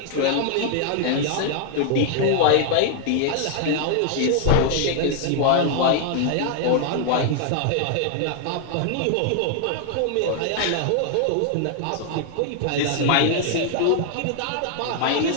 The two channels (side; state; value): both; different; correlation 0.00